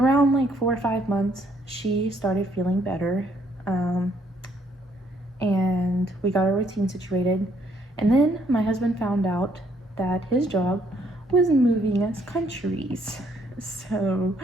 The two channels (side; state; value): both; normal; correlation 0.68